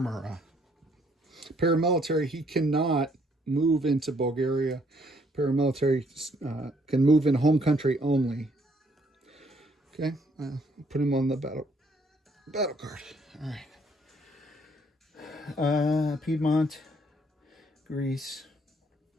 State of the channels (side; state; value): both; normal; correlation 0.67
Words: Paramilitary, he cannot move into Bulgaria. Paramilitary can move in home country only. Okay, put him on the battle card. All right. Piedmont, Greece.